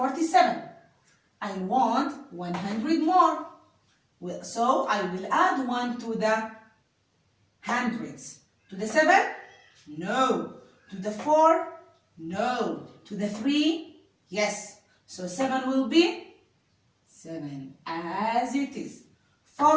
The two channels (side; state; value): both; identical; correlation 1.00